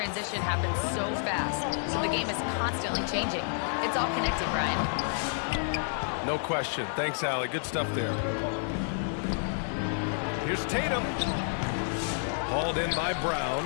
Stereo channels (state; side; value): silent; right; digital silence